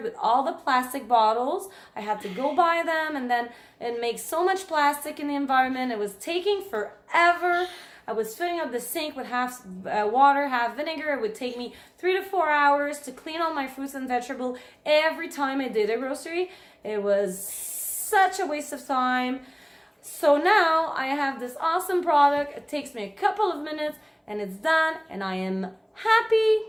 with all the plastic bottles. I had to go buy them and then it makes so much plastic in the environment. It was taking forever. I was filling up the sink with half water, half vinegar. It would take me 3 to 4 hours to clean all my fruits and vegetables every time I did a grocery. It was such a waste of time. So now I have this awesome product. It takes me a couple of minutes and it's done and I am happy,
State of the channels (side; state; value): both; identical; correlation 1.00